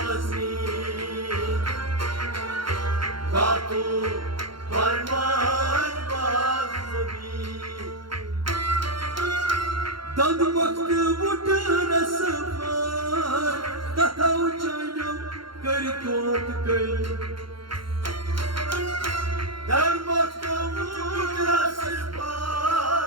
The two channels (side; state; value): left; late; 0.73 ms